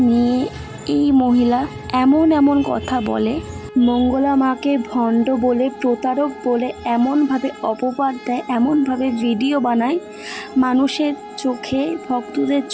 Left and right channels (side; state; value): both; identical; correlation 1.00